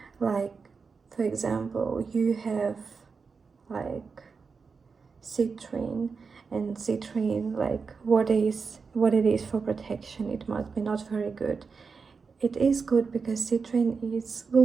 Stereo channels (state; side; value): quieter; left; 5.1 dB